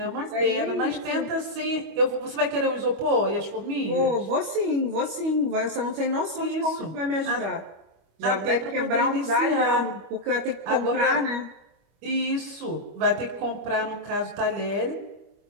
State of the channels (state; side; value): late; left; 25 ms